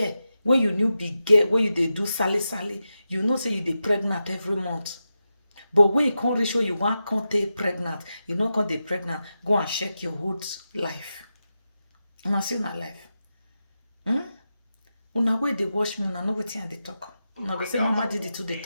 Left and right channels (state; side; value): inverted; both; correlation -0.90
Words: when you new be gay, when you dey do sally, you know say you dey pregnant every month. But when you can't reach where you want can't take pregnant, you know can't dey pregnant, go and check your whole life. Una see na life. Una way they watch me, una know wetin I dey talk. Una go say Mama Didi too dey